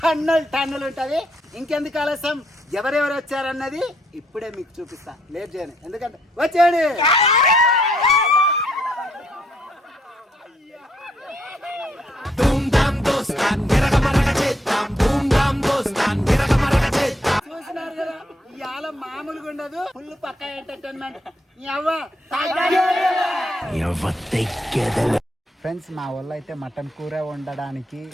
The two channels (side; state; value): both; normal; correlation 0.72